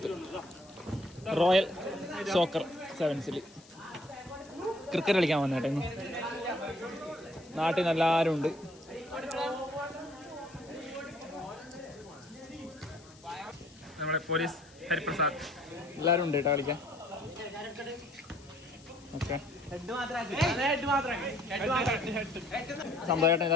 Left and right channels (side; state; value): left; noise; hiss, 25 dB below the sound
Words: royal soccer സെവൻസിൽ cricket കളിക്കാൻ വന്നേട്ടെ. ഇന്ന് നാട്ടിൽ നിന്ന് എല്ലാവരും ഉണ്ട്. നമ്മുടെ പോലീസ് ഹരിപ്രസാദ് എല്ലാവരും ഉണ്ട് കേട്ടോ കളിക്കാൻ. ഓക്കെ, സന്തോഷേട്ടൻ